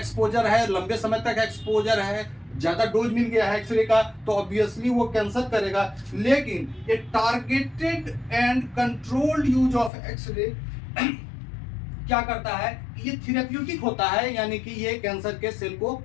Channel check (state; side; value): drops out; right; at 9.9 s